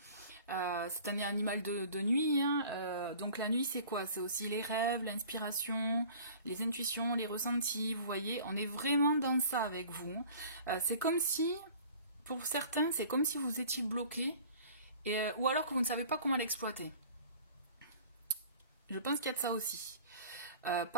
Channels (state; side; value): inverted; both; correlation -0.46